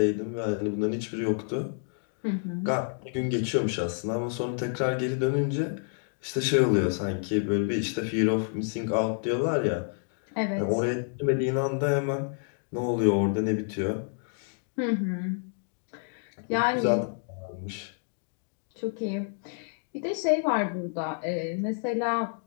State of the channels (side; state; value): right; silent; 57 dB below the other